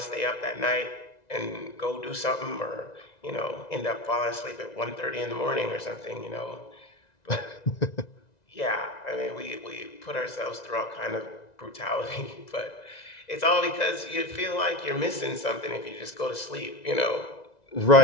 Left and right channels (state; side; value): late; right; 1.9 ms